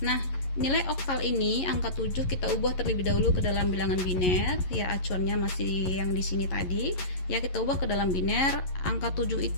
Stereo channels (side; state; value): right; late; 11 ms